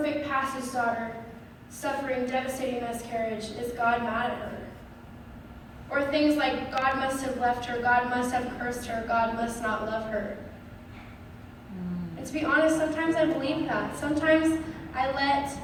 pastor's daughter, suffering devastating miscarriage, is God mad at her? Or things like, God must have left her, God must have cursed her, God must not love her. And to be honest, sometimes I believe that. Sometimes I let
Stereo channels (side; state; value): both; identical; correlation 1.00